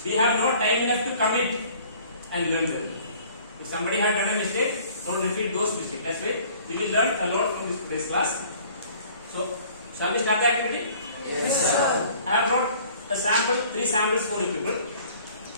we have no time enough to commit and learn them. If somebody had done a mistake, don't repeat those mistakes. That's why we will learn a lot from this class. So shall we start the activity? Yes, sir. I have brought a sample, 3 samples for you people.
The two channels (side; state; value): both; inverted; correlation -0.53